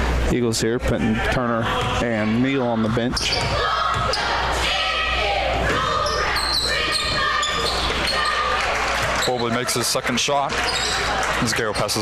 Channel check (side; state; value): both; identical; correlation 1.00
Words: Eagles here, putting Turner and Neal on the bench. Bobley makes his second shot. As Gale